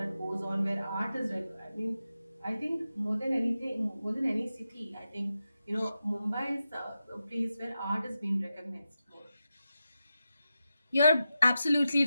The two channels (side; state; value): both; inverted; correlation -0.90